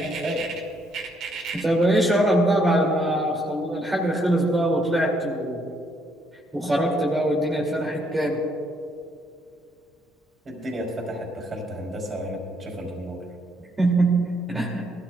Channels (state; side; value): normal; both; correlation 0.71